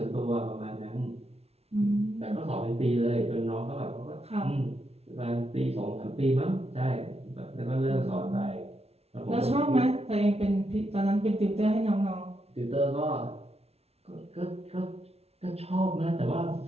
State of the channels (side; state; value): left; late; 0.30 ms